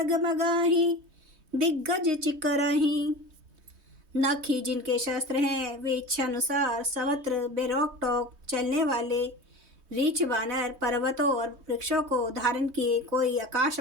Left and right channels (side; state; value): left; late; 3.2 ms